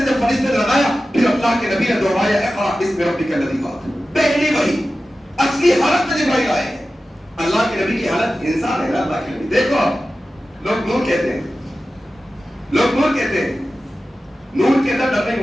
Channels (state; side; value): normal; both; correlation 0.94